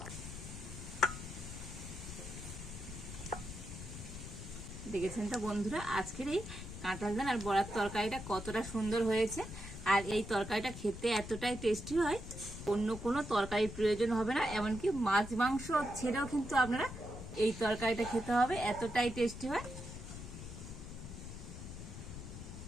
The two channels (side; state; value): left; noise; rumble, 10 dB below the sound